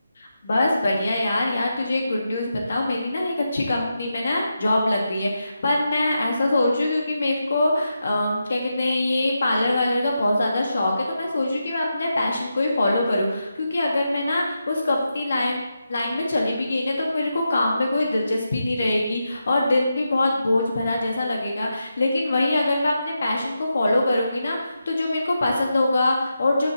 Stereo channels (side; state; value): both; inverted; correlation -0.87